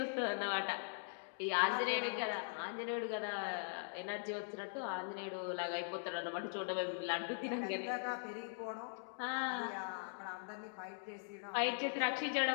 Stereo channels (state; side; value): silent; right; digital silence